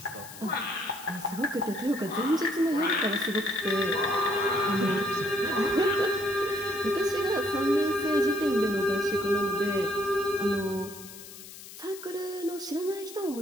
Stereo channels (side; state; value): left; noise; hiss, 15 dB below the sound